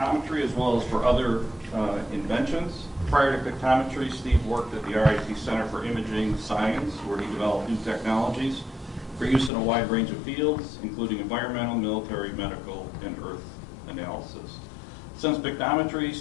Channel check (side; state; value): right; drops out; at 9.5 s